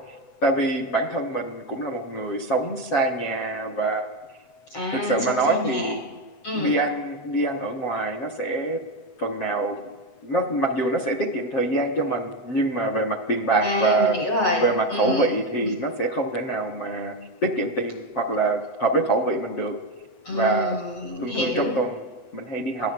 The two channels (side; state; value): right; late; 8.0 ms